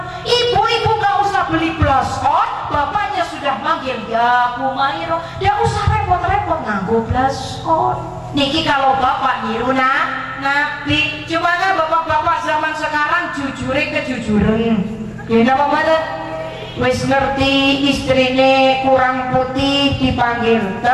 Ibu-ibu gak usah beli blush on, bapaknya sudah manggil ya Humairah. Dia usah repot-repot nganggo blush on. Niki kalau bapak niru Nabi. Cuma kan bapak-bapak zaman sekarang jujure kejujuran. Ya napa mboten? Wis ngerti istrine kurang putih dipanggil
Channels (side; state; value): both; identical; correlation 1.00